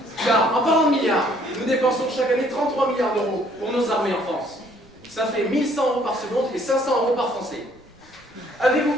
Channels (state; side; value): normal; both; correlation 0.62